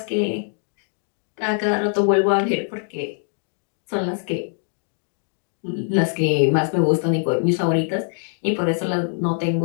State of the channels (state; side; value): silent; right; 63 dB below the other